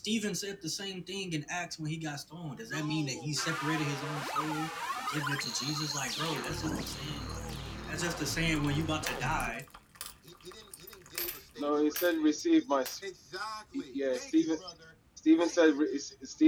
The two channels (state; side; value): identical; both; correlation 1.00